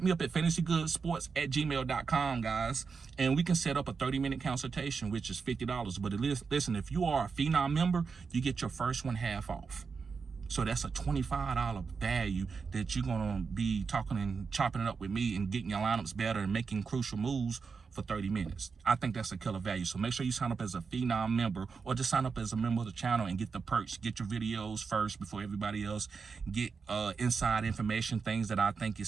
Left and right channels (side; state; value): left; quieter; 5.2 dB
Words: me up at fantasygoodsports@gmail.com, guys. And we can set up a 30-minute consultation, which is $50. But listen, if you are a Phenom member, you get your first one half off. So that's a $25 value that you're gonna be talking and chopping it up with me and getting your lineups better and making crucial moves for 30 minutes. I think that's a killer value. So make sure you sign up as a Phenom member, or just sign up as a member of the channel and get the perks. Get your videos first before everybody else. Get inside information, things that I think